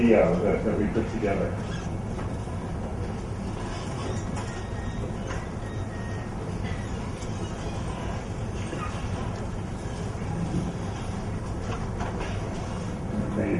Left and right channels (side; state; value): both; identical; correlation 1.00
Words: that we put together.